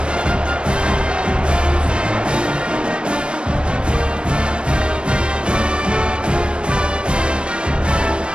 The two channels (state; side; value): late; left; 0.056 ms